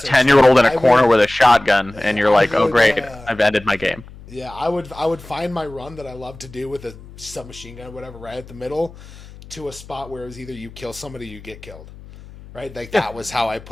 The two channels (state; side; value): noise; left; hum, 18 dB below the sound